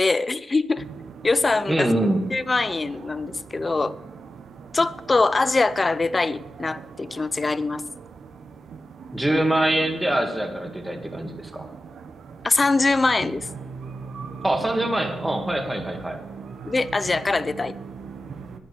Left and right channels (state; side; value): normal; both; correlation 0.94